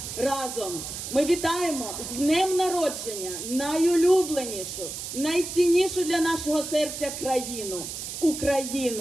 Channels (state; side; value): noise; right; hiss, 7 dB below the sound